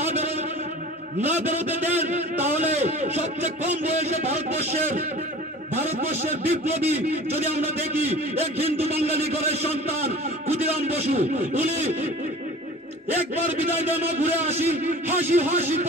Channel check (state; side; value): normal; both; correlation 0.41